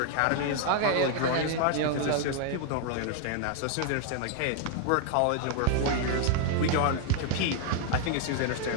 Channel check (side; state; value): both; different; correlation 0.00